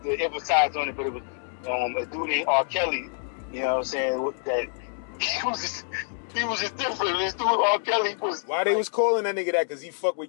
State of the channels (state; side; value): silent; right; digital silence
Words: to emphasize on it, but it was a dude named R. Kelly. You know what I'm saying? That he was just different. This dude R. Kelly was. Why they was calling that nigga that? Cause he fuck